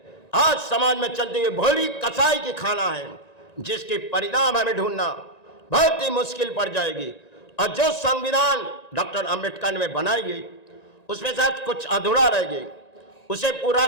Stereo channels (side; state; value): right; late; 1.9 ms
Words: आज समाज में चलती हुई भोली कसाई की खाना है, जिसके परिणाम हमें ढूंढना बहुत ही मुश्किल पड़ जाएगी। और जो संविधान डॉक्टर अंबेडकर ने बनाई गई, उसमें शायद कुछ अधूरा रह गई, उसे पूरा